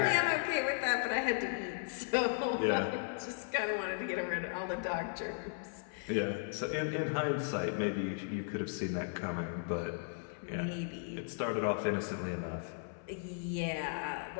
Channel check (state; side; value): silent; right; 54 dB below the other